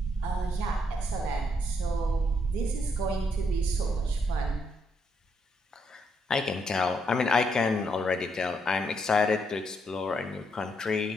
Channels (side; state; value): both; normal; correlation 0.76